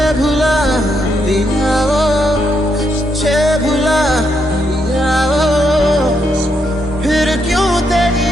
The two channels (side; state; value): both; normal; correlation 0.79